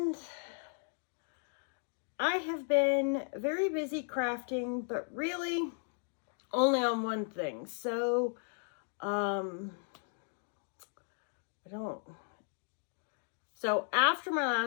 I have been very busy crafting, but really only on one thing. So, So after my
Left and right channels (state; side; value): silent; right; 54 dB below the other